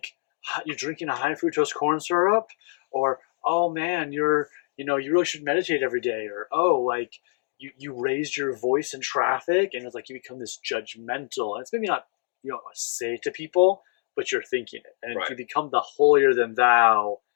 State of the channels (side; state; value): right; silent; digital silence